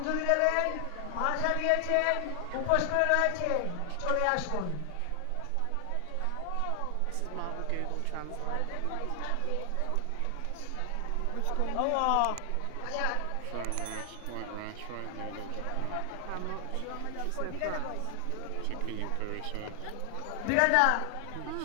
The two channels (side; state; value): both; different; correlation 0.00